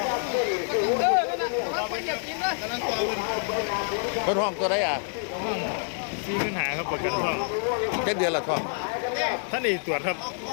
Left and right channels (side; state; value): right; silent; 60 dB below the other